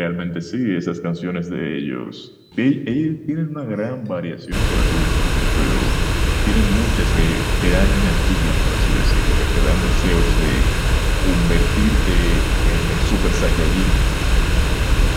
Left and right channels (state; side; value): identical; both; correlation 1.00